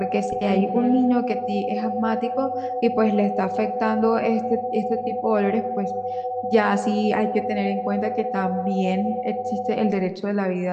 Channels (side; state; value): both; identical; correlation 1.00